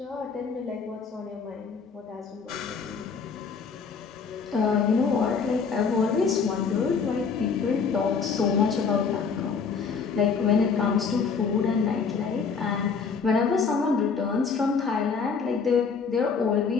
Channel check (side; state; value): right; quieter; 5.5 dB